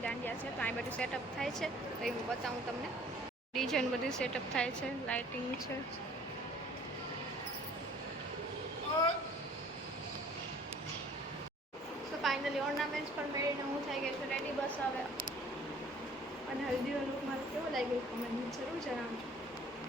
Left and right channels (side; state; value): both; normal; correlation 0.53